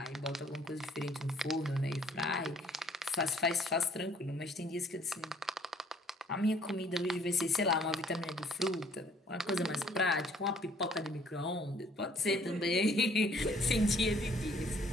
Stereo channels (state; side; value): normal; both; correlation 0.60